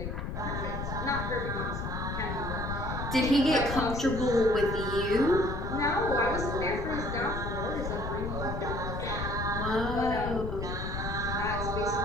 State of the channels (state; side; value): noise; left; rumble, 4 dB below the sound